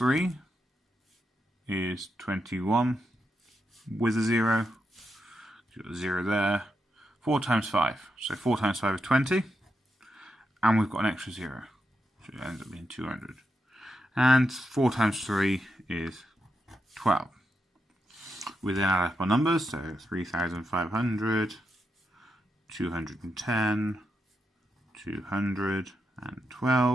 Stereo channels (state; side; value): normal; both; correlation 0.85